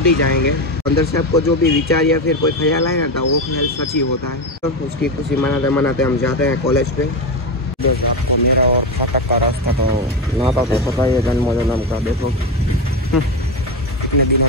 ही जाएंगे। अंदर से आपको जो भी विचार या फिर कोई ख्याल आया ना वो ख्याल सच ही होता है। तो उसकी खुशी मनाते हम जाते हैं कॉलेज पे। आपको मेरा और फाटक का रास्ता तो नाता तो पता ही है, जन्म का देखो कितने दिनों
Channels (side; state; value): both; normal; correlation 0.15